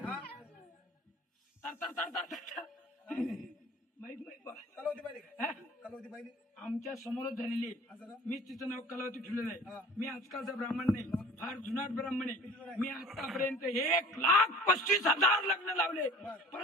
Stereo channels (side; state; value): both; normal; correlation 0.45